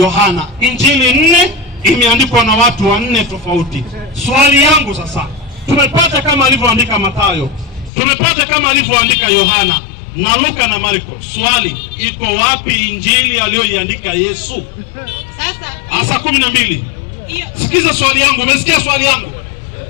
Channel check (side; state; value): right; drops out; at 7.9 s